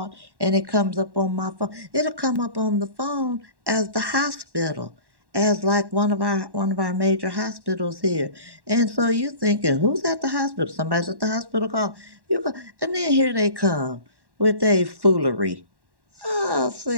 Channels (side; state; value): left; late; 1.1 ms